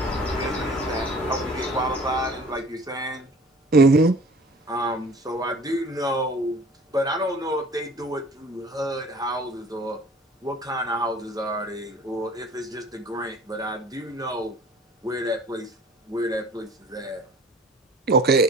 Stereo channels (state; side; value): normal; both; correlation 0.47